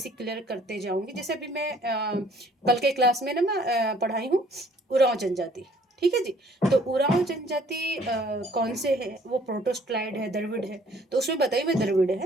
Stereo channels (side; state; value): both; normal; correlation 0.59